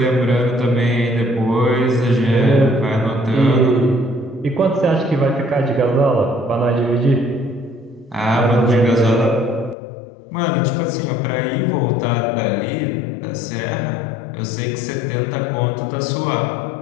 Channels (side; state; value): right; drops out; at 9.8 s